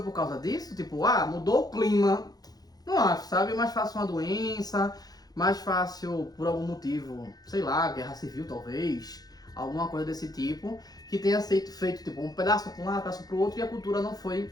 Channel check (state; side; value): late; right; 0.19 ms